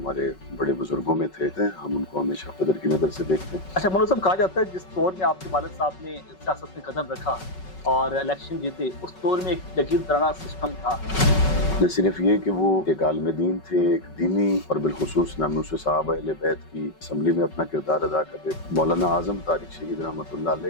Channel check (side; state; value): right; late; 5.3 ms